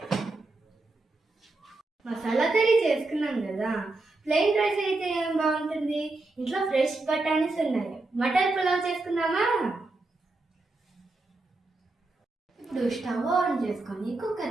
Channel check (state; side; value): quieter; left; 3.2 dB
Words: మసాలా కర్రీ చేసుకున్నాం కదా, ప్లెయిన్ రైస్ అయితే ఏం బాగుంటుంది. ఇంట్లో ఫ్రెష్ బఠానీస్ ఉన్నాయి. మటన్ పులావ్ చేసుకుందామా? ఇప్పుడు స్టవ్ ఆన్ చేసుకొని